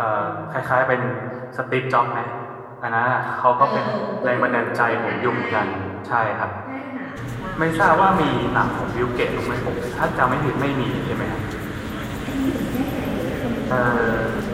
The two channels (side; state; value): both; identical; correlation 1.00